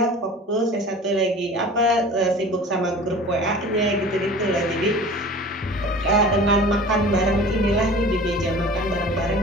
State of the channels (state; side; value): normal; both; correlation 0.41